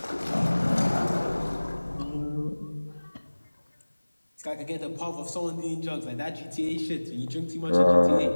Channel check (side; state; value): both; inverted; correlation -1.00